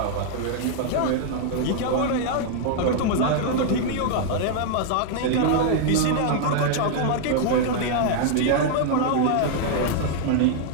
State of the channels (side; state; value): both; different; correlation 0.00